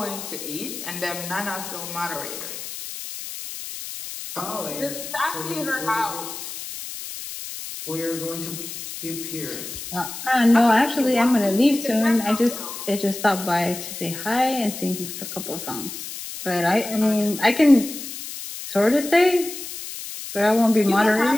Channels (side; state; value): left; noise; hiss, 9 dB below the sound